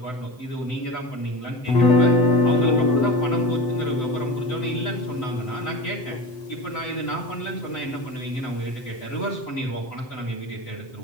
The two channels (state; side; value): late; right; 7.8 ms